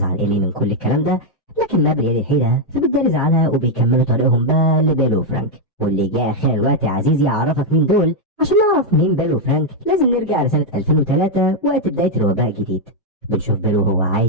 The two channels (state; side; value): normal; both; correlation 0.00